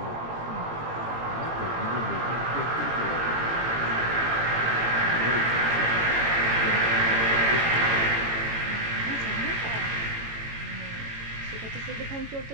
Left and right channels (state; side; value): late; left; 18 ms